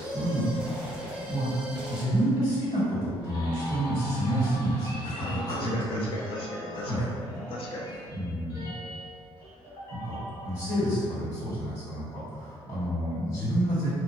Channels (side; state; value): both; normal; correlation 0.69